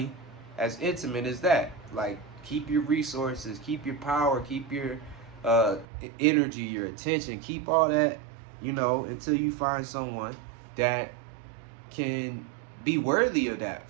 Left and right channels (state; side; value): drops out; left; at 5.9 s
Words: as intimate as that. Like, keep your resources, keep your power, keep your uh, energy, your attention, keep all that, until you find someone that can be worthy of